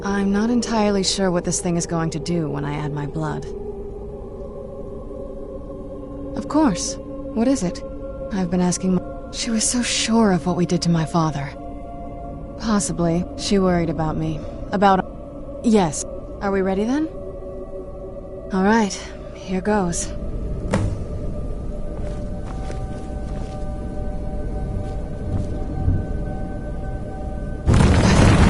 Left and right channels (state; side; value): identical; both; correlation 1.00